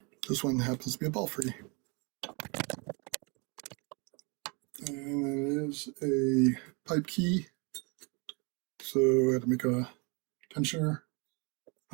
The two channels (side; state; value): left; quieter; 31.6 dB